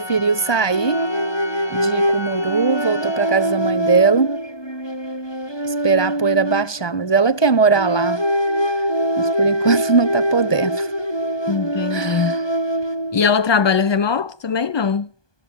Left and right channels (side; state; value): right; late; 1.2 ms